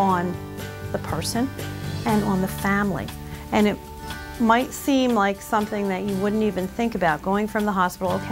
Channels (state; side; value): identical; both; correlation 1.00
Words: the person and on the family. And it might seem like something that you wouldn't even think about, going from the hospital,